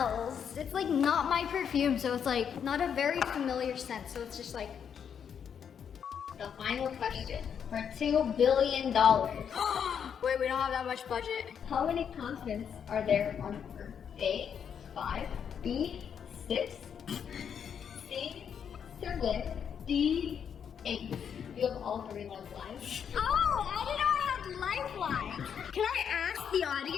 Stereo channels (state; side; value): quieter; right; 7.8 dB